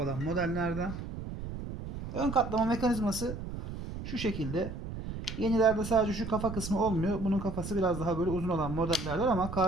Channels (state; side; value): noise; right; rumble, 8 dB below the sound